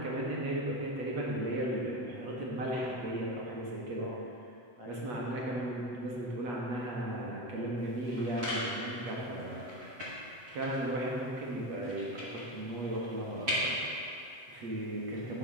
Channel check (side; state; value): left; late; 7.5 ms